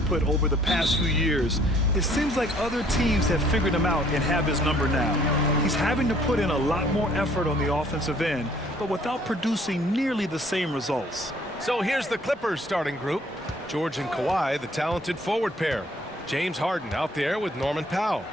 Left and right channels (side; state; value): both; normal; correlation 0.60